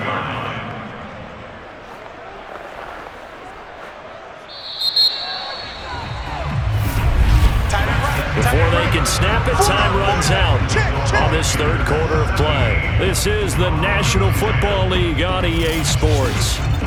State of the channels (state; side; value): identical; both; correlation 1.00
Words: line. Before they can snap it, time runs out on this 3rd quarter of play. This is the National Football League on EA Sports.